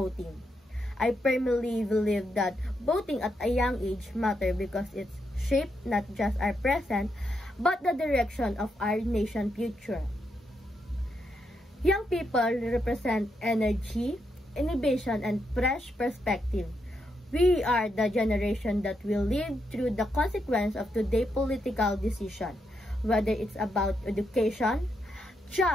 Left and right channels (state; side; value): normal; both; correlation 0.81